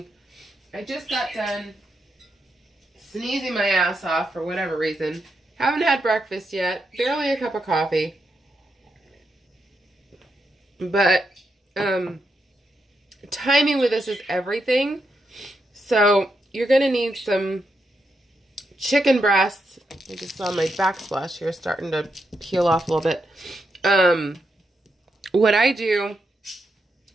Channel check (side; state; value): both; normal; correlation 0.83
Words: I just got done sneezing my ass off for whatever reason. Haven't had breakfast yet, barely a cup of coffee. But timing with this is everything. So you're going to need some chicken breasts. I just saw my backsplash here starting to peel off a little bit. What I do